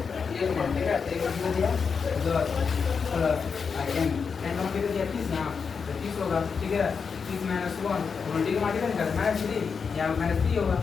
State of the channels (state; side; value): quieter; right; 5.8 dB